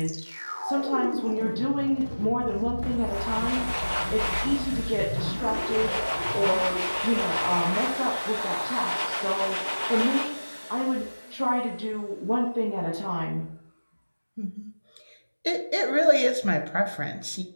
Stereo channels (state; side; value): inverted; both; correlation -1.00